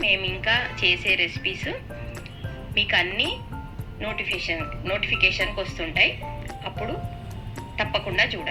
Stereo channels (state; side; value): identical; both; correlation 1.00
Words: మేము ఇంకా చేసే రెసిపీస్ మీకు అన్నీ నోటిఫికేషన్కి వస్తుంటాయి. అప్పుడు తప్పకుండా